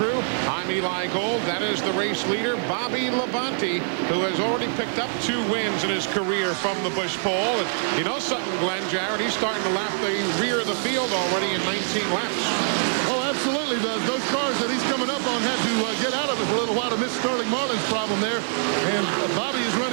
I'm Eli Gold. That is the race leader, Bobby Labonte, who has already picked up 2 wins in his career from the Busch pole. And you know something, Glenn Jarrett, he's starting to lap the rear of the field already in 19 laps. Oh, absolutely. Those cars that he's coming up on had to get out of it for a little while to miss Sterling Marlin's problem there. And Bobby is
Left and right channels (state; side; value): silent; left; digital silence